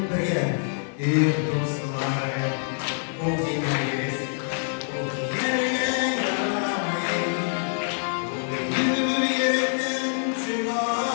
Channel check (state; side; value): silent; right; digital silence